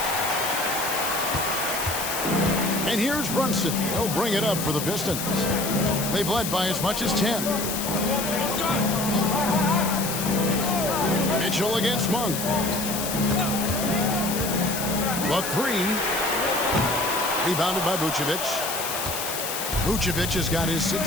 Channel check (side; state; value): left; noise; hiss, 4 dB below the sound